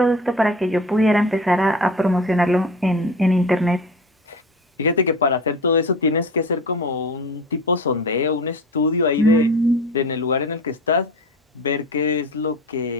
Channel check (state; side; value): normal; both; correlation 0.33